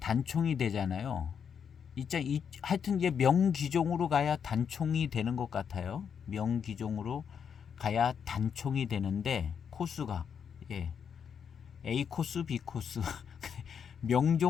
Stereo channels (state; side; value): quieter; right; 7.3 dB